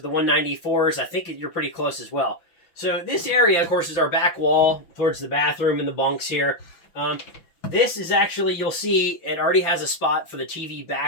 the 194s, I think you're pretty close as well. So this area, of course, is our back wall towards the bathroom and the bunks here. This is actually, you'll see, it already has a spot for the TV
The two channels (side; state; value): right; late; 6.0 ms